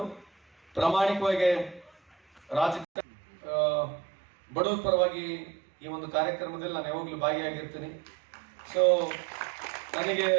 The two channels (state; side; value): drops out; left; at 2.9 s